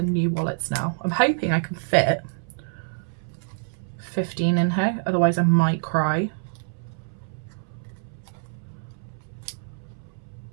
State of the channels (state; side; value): silent; left; 61 dB below the other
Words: new wallets now. I'm hoping I can fit 15 in here, otherwise I might cry.